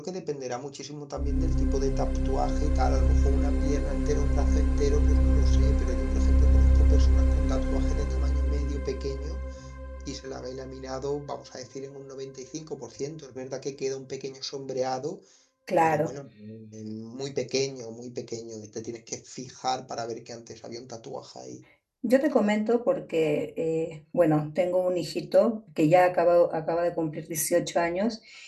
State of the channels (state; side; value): identical; both; correlation 1.00